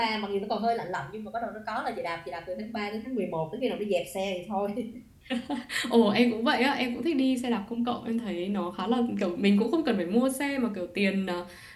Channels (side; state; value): both; identical; correlation 1.00